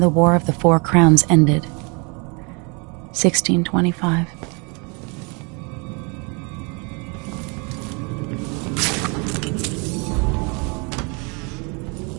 the War of the Four Crowns ended. 1625.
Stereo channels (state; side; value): quieter; left; 32.4 dB